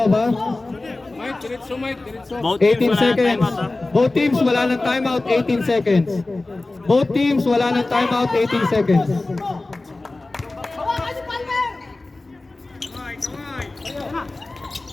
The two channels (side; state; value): right; quieter; 3.1 dB